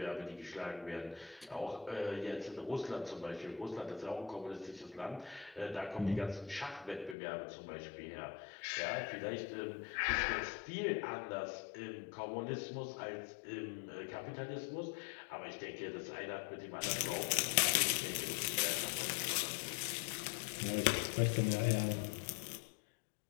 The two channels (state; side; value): drops out; right; at 7.2 s